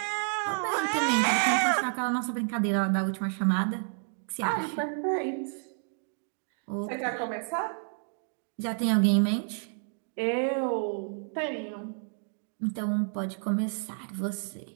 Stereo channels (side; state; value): left; silent; 58 dB below the other